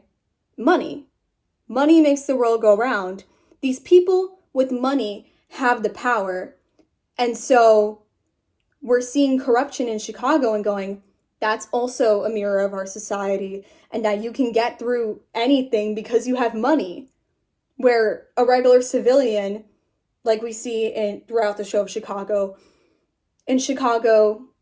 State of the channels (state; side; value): identical; both; correlation 1.00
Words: money. Money makes the world go round. These people with money have the power. And so we're seeing corruption in Chicago and going, that's also a mirror of our society, and that you can get through anything because you have money. Where a regular civilian, like we see throughout the show of Chicago, in Chicago,